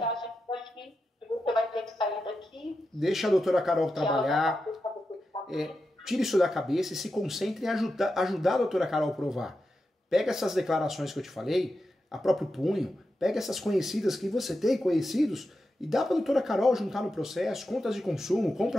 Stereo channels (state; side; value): normal; both; correlation 0.89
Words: Você vai ter que sair daqui. Deixa a doutora Carol trabalhar. Tire isso da cabeça e se concentre em ajudar a doutora Carol a provar. Pega essas declarações que eu te falei, a próprio punho, pega essas conhecidas que você tem, conhecidos, e dá para a doutora Carol juntar no processo, contas de consumo,